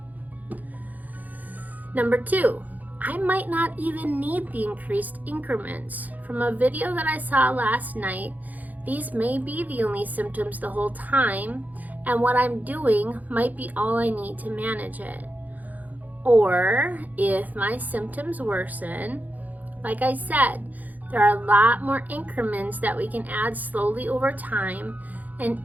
Number 2, I might not even need the increased increments. From a video that I saw last night, these may be the only symptoms the whole time, and what I'm doing might be all I need to manage it. Or if my symptoms worsen, like I said, there are a lot more increments that we can add slowly over time, and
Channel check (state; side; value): late; left; 0.081 ms